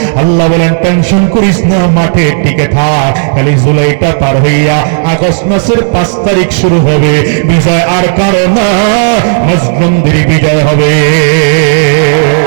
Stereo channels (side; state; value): left; silent; digital silence